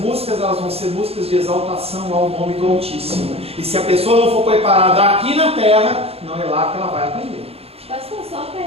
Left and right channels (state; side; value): late; left; 0.29 ms